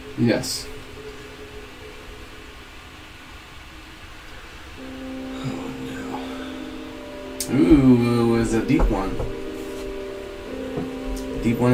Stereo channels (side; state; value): both; identical; correlation 1.00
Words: Yes. Oh no. Ooh, it's a deep one. Deep one